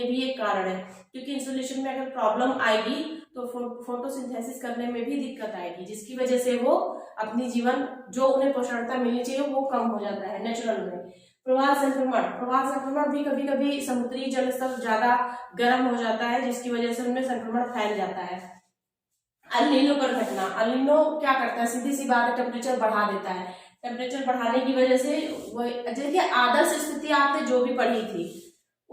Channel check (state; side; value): identical; both; correlation 1.00